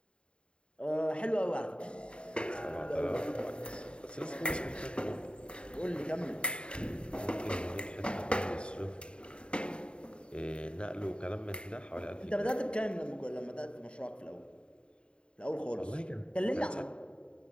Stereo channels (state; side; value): late; right; 0.054 ms